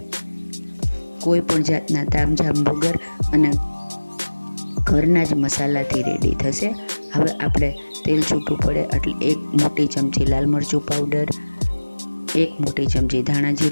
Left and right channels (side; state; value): both; inverted; correlation -1.00